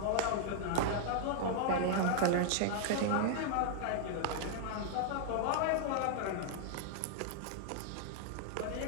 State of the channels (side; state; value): both; different; correlation 0.00